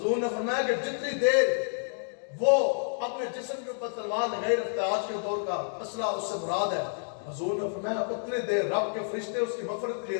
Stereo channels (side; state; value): right; silent; digital silence